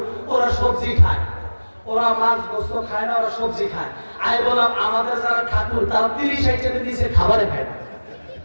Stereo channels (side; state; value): both; inverted; correlation -1.00